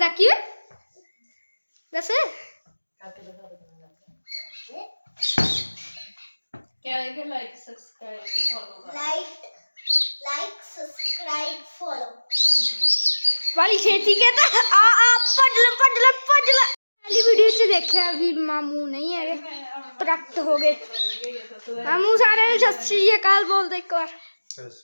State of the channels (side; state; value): both; inverted; correlation -1.00